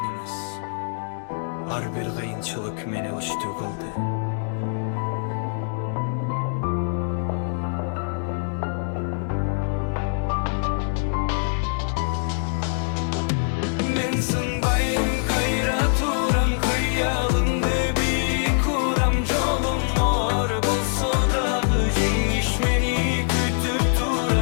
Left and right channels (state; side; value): silent; right; digital silence